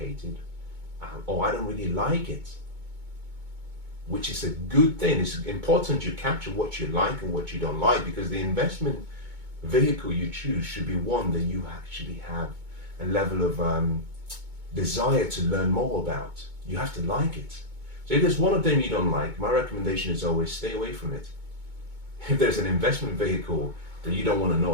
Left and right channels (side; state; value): left; late; 2.2 ms